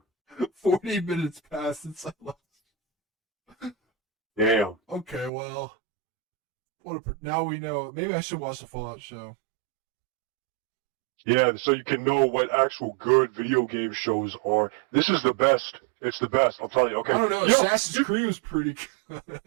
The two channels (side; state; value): left; drops out; at 5.3 s